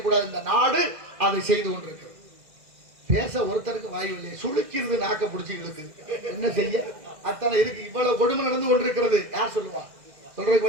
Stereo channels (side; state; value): left; late; 2.0 ms